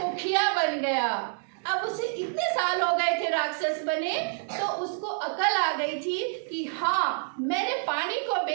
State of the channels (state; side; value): silent; left; digital silence